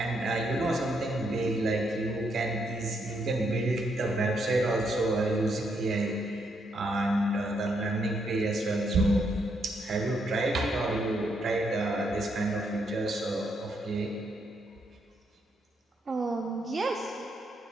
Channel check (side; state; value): both; normal; correlation 0.76